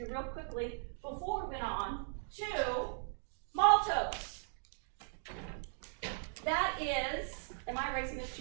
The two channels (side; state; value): left; silent; digital silence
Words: real quickly before we went on to maltose. That is, am I erasing this